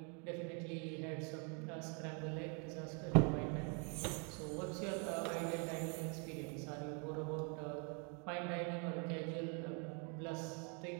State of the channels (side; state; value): left; quieter; 36.4 dB